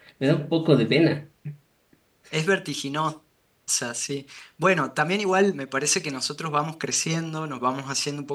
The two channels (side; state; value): both; identical; correlation 1.00